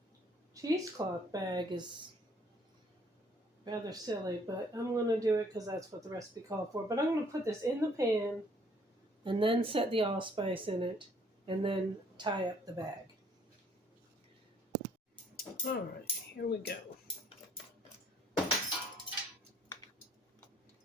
cheesecloth bag is rather silly, but I'm going to do it because that's what the recipe called for. But I'm going to put this in the pan and then set the allspice in it and then tie up the bag. All right, here we go.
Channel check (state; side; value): normal; both; correlation 0.62